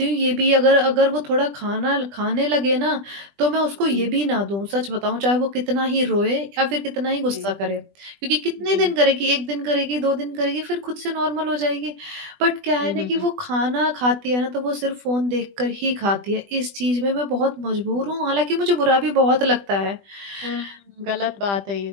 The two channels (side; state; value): left; late; 20 ms